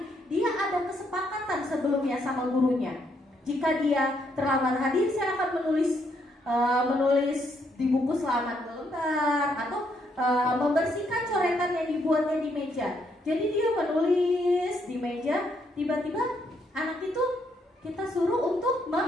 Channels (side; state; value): both; normal; correlation 0.74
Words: Dia ada kesepakatan sebelumnya sama gurunya. Jika dia terlambat hadir, saya akan menulis di buku selama 2 lembar, atau membersihkan coretan yang dibuatnya di meja. Jadi dia menulis di meja, tiba-tiba anak itu kita suruh untuk